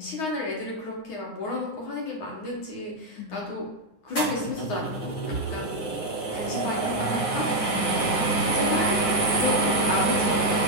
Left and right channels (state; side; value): late; right; 9.6 ms